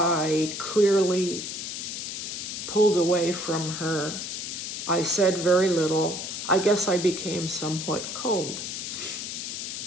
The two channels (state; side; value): noise; left; hiss, 5 dB below the sound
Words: clearly pulled away from her. I said very little. I guess I became somewhat cold.